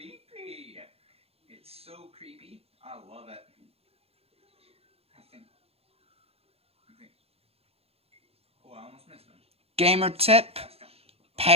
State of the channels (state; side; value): late; left; 0.29 ms